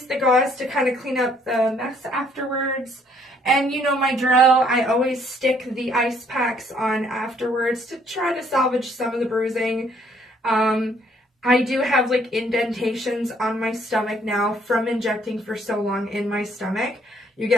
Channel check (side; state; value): both; normal; correlation 0.64